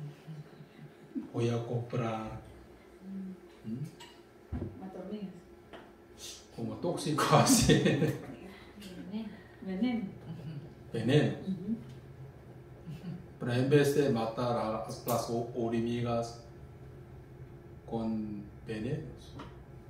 Voy a comprar Hormigas. como tóxico así. Veneno. Pero en vez de matar a las hormigas con venenos,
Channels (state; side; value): identical; both; correlation 1.00